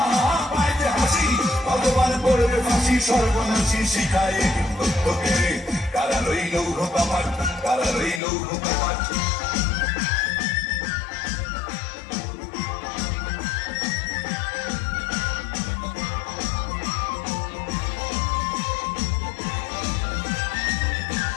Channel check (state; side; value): drops out; right; at 8.2 s